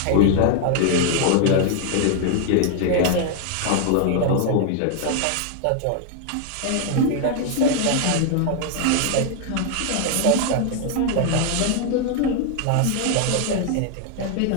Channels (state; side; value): different; both; correlation 0.00